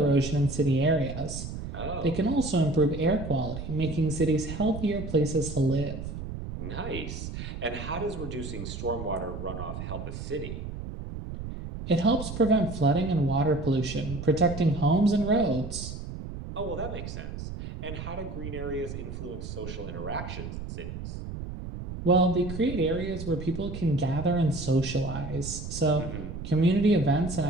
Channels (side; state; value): right; noise; rumble, 8 dB below the sound